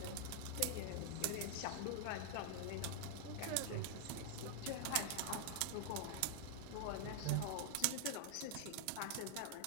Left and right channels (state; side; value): different; both; correlation 0.00